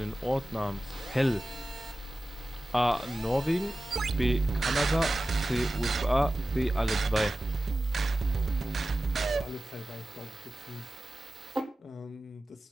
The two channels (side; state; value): both; normal; correlation 0.95